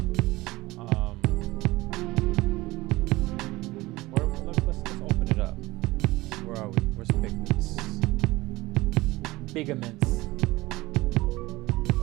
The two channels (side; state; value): left; quieter; 19.9 dB